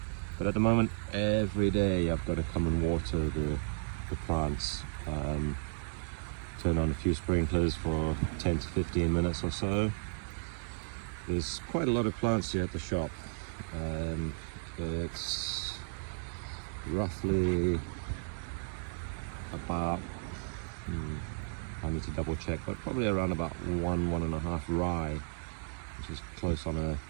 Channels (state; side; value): silent; left; digital silence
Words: But at the moment, every day I've got to come and water the plants. Turn on a few sprinklers for 10 to 15 minutes or so. There's quite a lot of plants here at the shop. It's roughly about, I need to double check, but probably around about 1.5 rye, which is close on